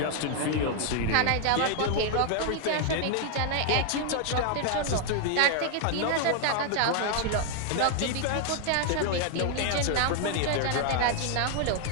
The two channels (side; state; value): both; different; correlation 0.00